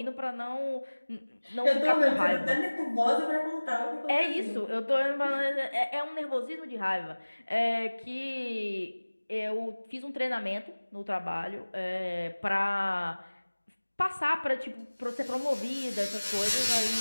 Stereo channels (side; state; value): both; inverted; correlation -1.00